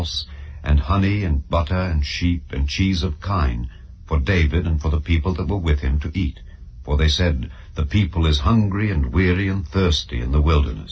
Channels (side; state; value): both; identical; correlation 1.00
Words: and honey and butter and sheep and cheese of kine, for David and for the people that were with him to eat. For they said, The people is hungry and weary and thirsty in the